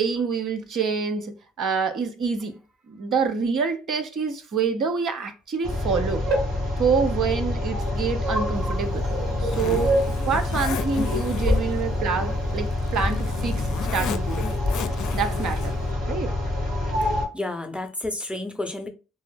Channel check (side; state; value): both; normal; correlation 0.63